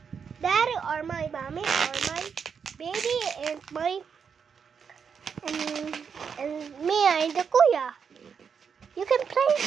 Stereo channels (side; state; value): left; quieter; 6.5 dB